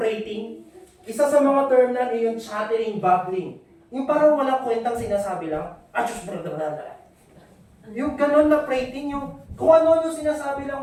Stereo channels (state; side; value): identical; both; correlation 1.00